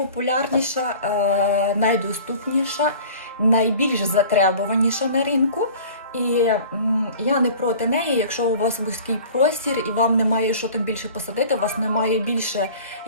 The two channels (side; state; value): both; inverted; correlation -0.44